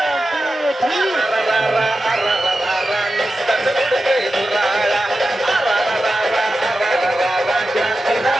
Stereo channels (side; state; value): both; normal; correlation 0.92